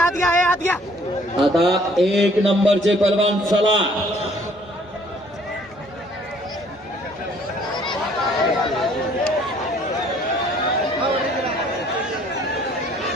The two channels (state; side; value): normal; both; correlation 0.60